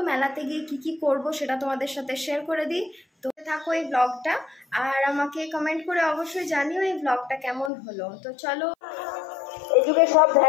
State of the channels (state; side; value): drops out; right; at 7.7 s